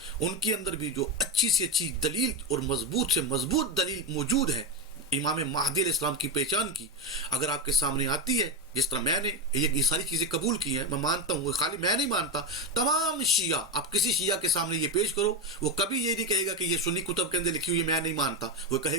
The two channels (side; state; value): both; normal; correlation 0.15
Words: ان کے اندر بھی جو اچھی سے اچھی دلیل اور مضبوط سے مضبوط دلیل موجود ہے امام مہدی علیہ السلام کی پہچان کی، اگر آپ کے سامنے آتی ہے، جس طرح میں نے یہ ساری چیزیں قبول کی ہیں، میں مانتا ہوں، خالی میں نہیں مانتا، تمام شیعہ، آپ کسی شیعہ کے سامنے یہ پیش کرو وہ کبھی یہ نہیں کہے گا کہ یہ سنی کتب کے اندر لکھی ہوئی میں نہیں مانتا، وہ